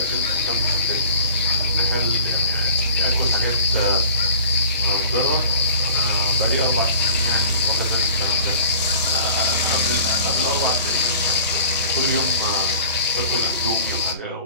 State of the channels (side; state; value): both; inverted; correlation -0.47